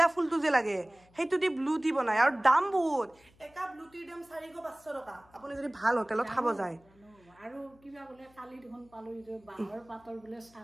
ফুলটো যে লাগে সেইটো দি ব্লু টি বনায় আৰু দাম বহুত এটা ব্লু টিৰ দাম 400-500 টকা আপুনি যদি ভাল হোটেলত খাব যায় আৰু কিবা বোলে কালি দেখোন পালো যে বাঁহৰ পাতৰ বোলে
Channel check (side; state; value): left; noise; hum, 29 dB below the sound